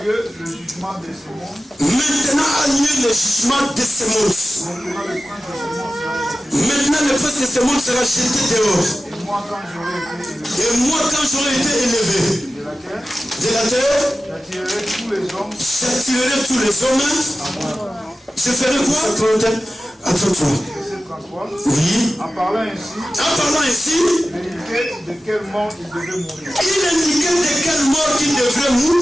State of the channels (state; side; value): normal; both; correlation 0.95